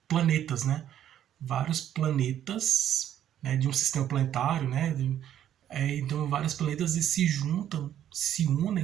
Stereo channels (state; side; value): quieter; left; 10.8 dB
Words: planetas, né? Vários planetas, né, de um sistema planetário, né? Então vários planetas se juntam, se